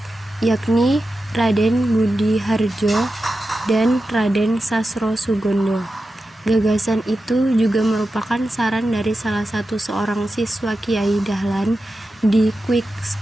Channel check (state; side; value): normal; both; correlation 0.91